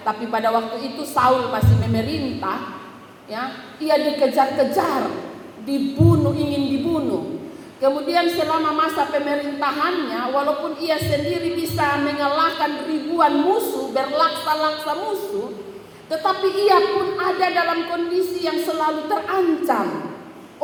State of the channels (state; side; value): identical; both; correlation 1.00